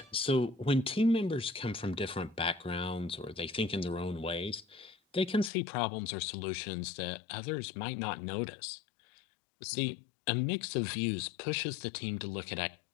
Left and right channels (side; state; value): right; drops out; at 5.5 s